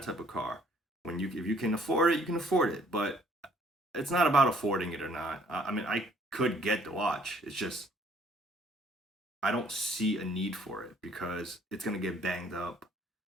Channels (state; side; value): normal; both; correlation 0.61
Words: type of car? If you can afford it, you can afford it. But it's not about affording it or not. I mean, I could get the watch. It's just I don't see a need for it because it's gonna get banged up,